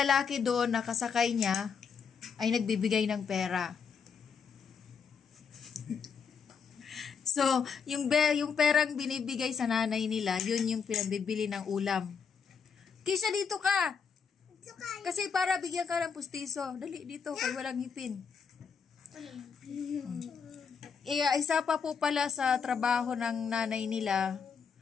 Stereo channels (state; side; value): quieter; right; 6.2 dB